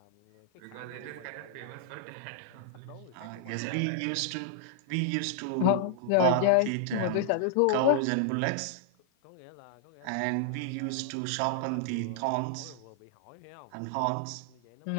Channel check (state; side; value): different; both; correlation -0.01